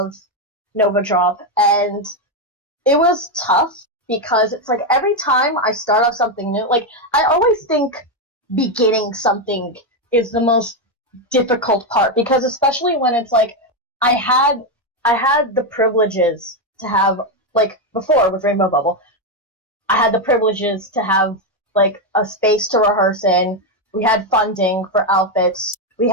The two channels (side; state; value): both; normal; correlation 0.06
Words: Nova Drop, and it was tough because it's like every time I start off something new, like I always think beginning something is the most difficult part because especially when it's like I had the privileges to have like before with Rainbow Bubble, I had the privileges to have like a space to rehearse in. We had funding for outfits. We